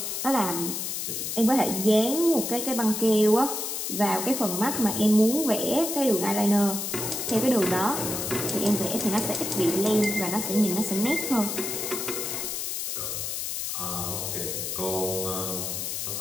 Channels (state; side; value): noise; left; hiss, 3 dB below the sound